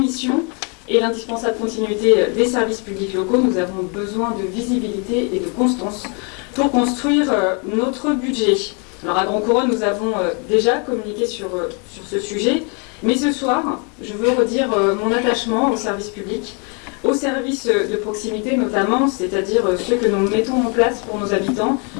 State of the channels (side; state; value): right; quieter; 36.0 dB